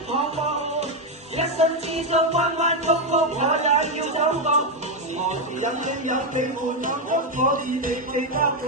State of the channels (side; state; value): both; normal; correlation 0.05